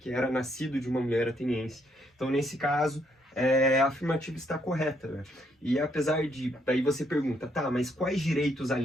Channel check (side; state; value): both; normal; correlation 0.73